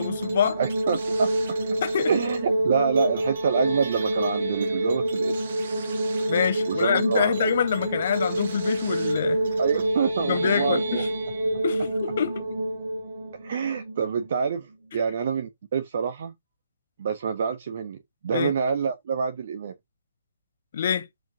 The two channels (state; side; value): inverted; both; correlation -0.76